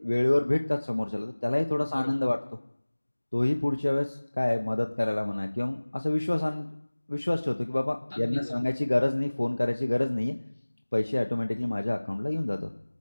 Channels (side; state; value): both; inverted; correlation -1.00